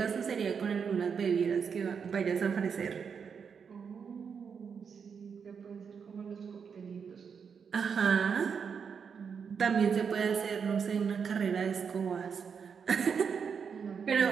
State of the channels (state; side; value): quieter; left; 6.4 dB